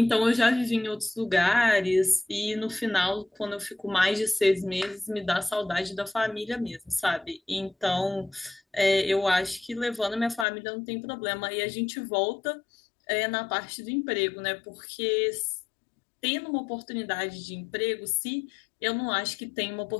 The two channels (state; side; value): drops out; right; at 10.5 s